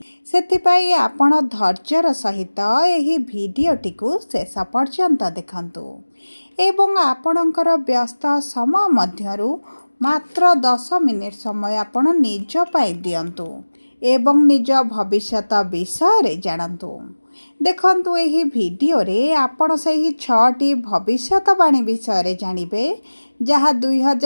सेथिपाई आपण धैर्यर सहित एही भिडियोटी को शेष पर्यंत देखंतु एवं आपणकर व्यस्त समय मध्यरु मात्र 10 मिनिट समय आपण निज पाई दियंतु एवं निज भविष्यत विषय रे जानंतु। देखंतु एही भिडियो रे आपण सही 6टी भविष्यतवाणी विषय रे जानिबे जहाँ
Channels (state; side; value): inverted; both; correlation -1.00